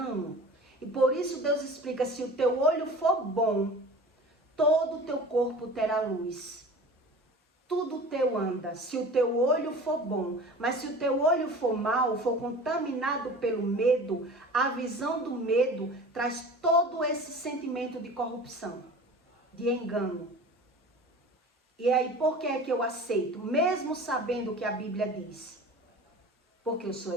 E por isso Deus explica, se o teu olho for bom, todo o teu corpo terá luz. Tudo teu anda, se o teu olho for bom. Mas se o teu olho for mau, for contaminado pelo medo, a visão do medo traz todo esse sentimento de corrupção, de engano. E aí, por que é que eu aceito? Mesmo sabendo o que a Bíblia diz. Porque eu sou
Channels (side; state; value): both; normal; correlation 0.39